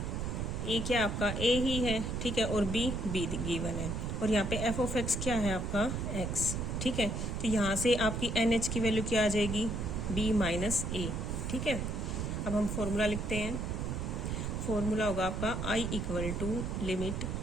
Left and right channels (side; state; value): right; noise; rumble, 2 dB below the sound